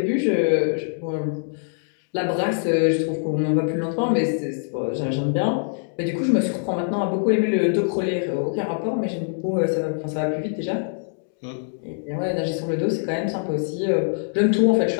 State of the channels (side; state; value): right; silent; digital silence